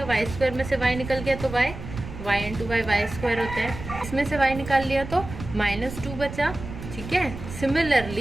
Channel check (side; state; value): right; noise; rumble, 10 dB below the sound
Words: y² में से y निकल गया तो y × y y² होता है। इसमें से y निकाल लिया तो -2 बचा, ठीक है।